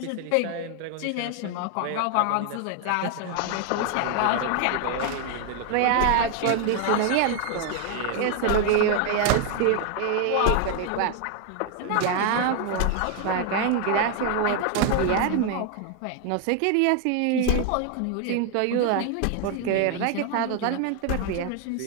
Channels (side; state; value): both; different; correlation 0.00